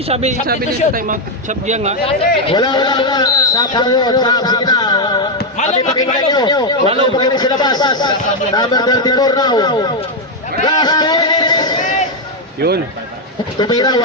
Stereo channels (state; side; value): normal; both; correlation 0.02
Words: sabi nito timeout. Sabi yan nga. Wala. Sab tayo. Sige na. Kami pakinggan nyo. Wala pakinggan sila bas. Number 34 now. Last 2 minutes. Yun. Tumira,